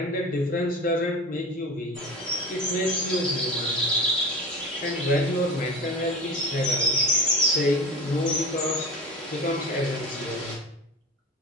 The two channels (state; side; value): normal; both; correlation 0.31